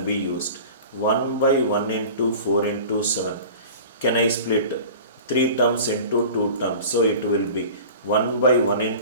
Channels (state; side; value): inverted; both; correlation -0.39